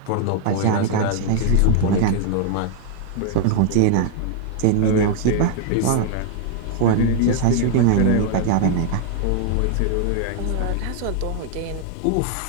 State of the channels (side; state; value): both; different; correlation 0.00